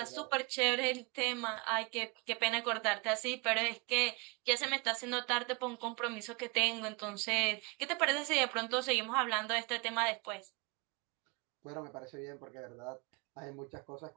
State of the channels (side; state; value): left; quieter; 29.0 dB